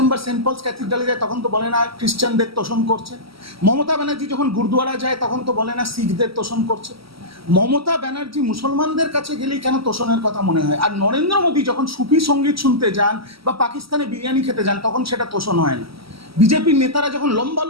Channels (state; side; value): late; left; 0.75 ms